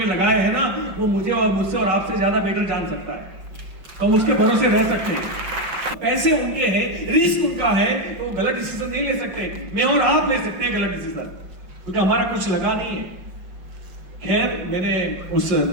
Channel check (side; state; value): left; late; 5.4 ms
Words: लगाए हैं ना, वो मुझे और मुझसे और आपसे ज्यादा बेटर जान सकता है, तो हम उसके भरोसे रह सकते हैं। पैसे उनके हैं, रिस्क उनका है, तो वो गलत डिसीजन नहीं ले सकते। मैं और आप ले सकते हैं गलत डिसीजन, क्योंकि हमारा कुछ लगा नहीं है। खैर, मैंने उस